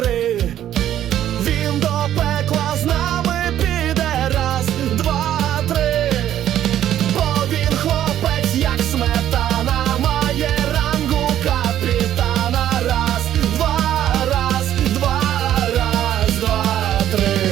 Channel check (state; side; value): quieter; left; 11.5 dB